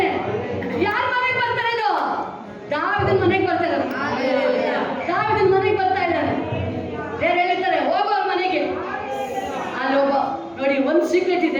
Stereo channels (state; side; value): identical; both; correlation 1.00